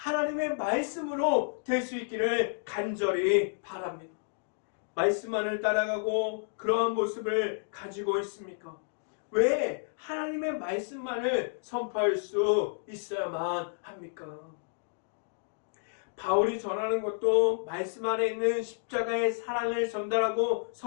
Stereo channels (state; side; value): silent; right; digital silence